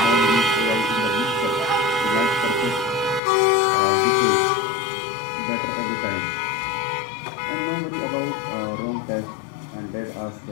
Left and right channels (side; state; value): right; drops out; at 3.2 s